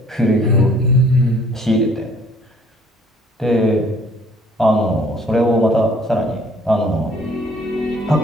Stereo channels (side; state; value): both; normal; correlation 0.58